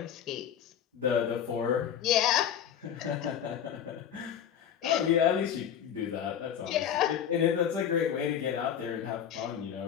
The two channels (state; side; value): quieter; right; 9.0 dB